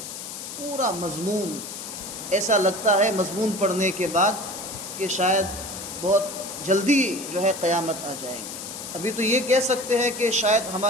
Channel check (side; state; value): left; noise; hiss, 9 dB below the sound